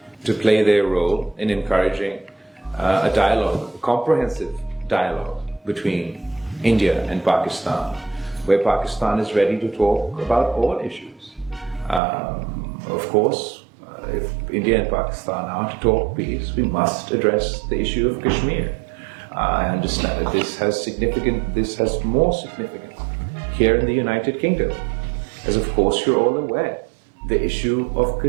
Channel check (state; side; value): drops out; left; at 12.0 s